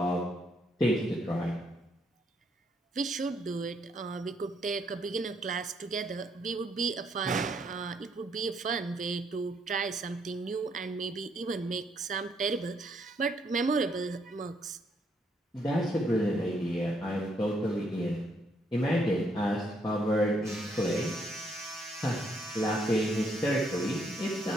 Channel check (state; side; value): normal; both; correlation 0.72